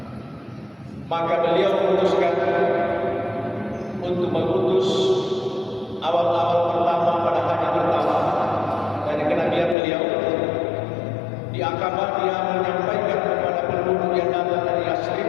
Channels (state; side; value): drops out; right; at 9.8 s